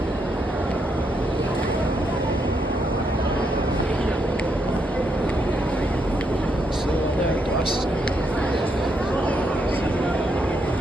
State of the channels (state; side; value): normal; both; correlation 0.78